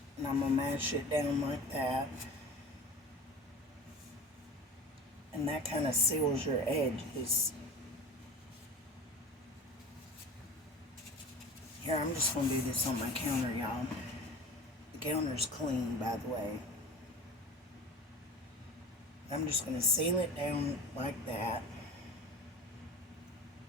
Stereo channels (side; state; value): both; normal; correlation 0.37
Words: and I'm going to mash it down like that. And that kind of seals your edges. Here, I'm just going to do this on my counter, y'all. The counter's clean, by the way. I'm just going to seal it down like that.